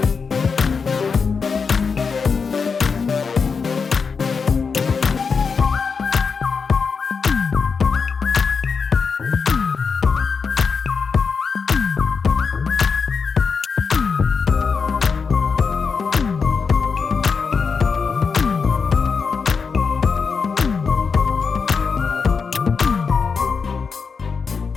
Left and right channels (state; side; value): quieter; right; 5.4 dB